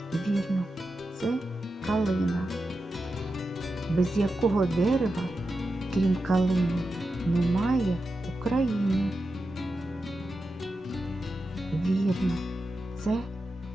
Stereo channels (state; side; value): normal; both; correlation 0.90